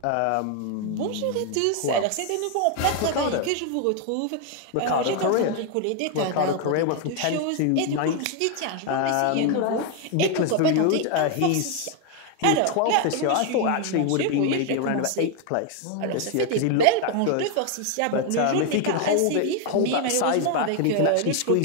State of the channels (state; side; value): different; both; correlation 0.01